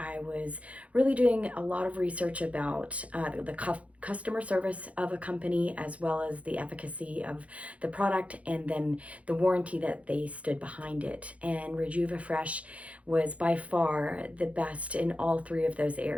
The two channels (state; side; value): late; left; 0.065 ms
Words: was really doing a lot of research about the customer service of a company, as well as the efficacy of the product, and then the warranty that they stood behind it. And Refresh was by far the best in all three of those